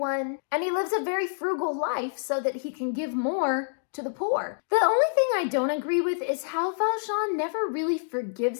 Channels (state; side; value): silent; right; digital silence